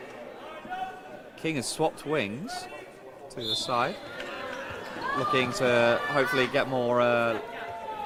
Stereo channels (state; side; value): identical; both; correlation 1.00